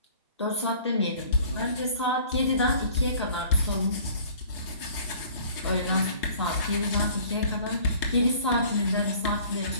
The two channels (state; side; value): inverted; both; correlation -0.51